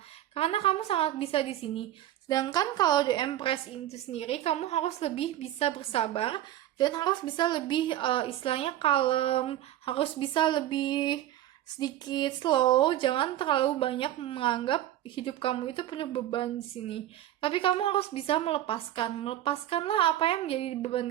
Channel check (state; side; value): quieter; left; 13.1 dB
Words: karena kamu sangat bisa di sini. Sedangkan kalau The Empress itu sendiri, kamu harus lebih bisa bersabar dan harus bisa lebih istilahnya kalem, harus bisa lebih sedikit slow, jangan terlalu banyak menganggap hidup kamu itu penuh beban di sini. Tapi kamu harus bisa melepaskanlah apa yang menjadi